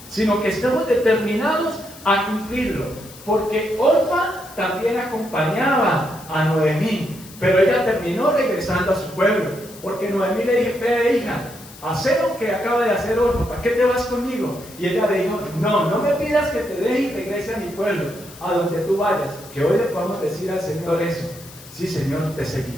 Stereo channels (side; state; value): left; noise; hiss, 19 dB below the sound